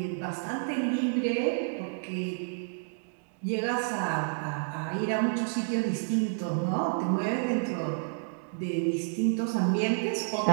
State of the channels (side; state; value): left; silent; digital silence